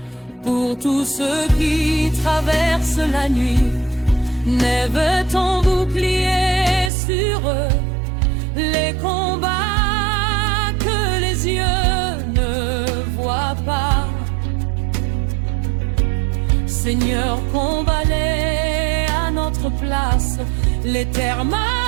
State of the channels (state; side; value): drops out; left; at 6.9 s